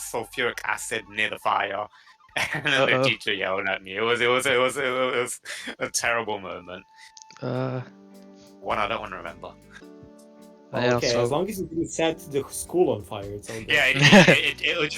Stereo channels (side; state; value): both; identical; correlation 1.00